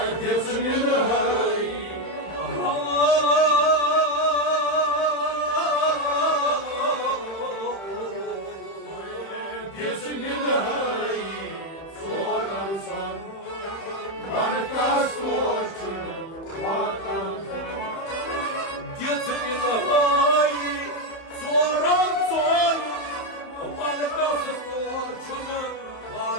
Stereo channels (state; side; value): late; right; 31 ms